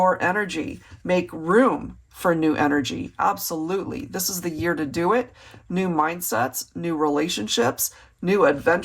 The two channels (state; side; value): identical; both; correlation 1.00